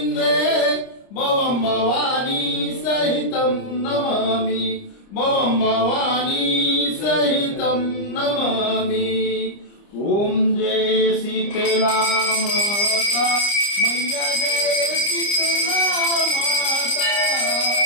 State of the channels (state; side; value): late; right; 30 ms